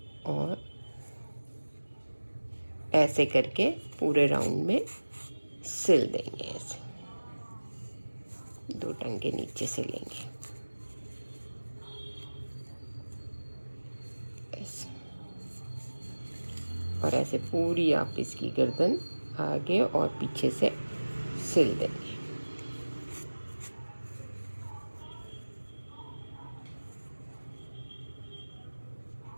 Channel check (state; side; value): inverted; both; correlation -1.00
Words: और ऐसे करके पूरे राउंड में सिल देंगे। ऐसे 2 टंग के नीचे से लेंगे ऐसे, और ऐसे पूरी आप इसकी गर्दन आगे और पीछे से सिल देंगे।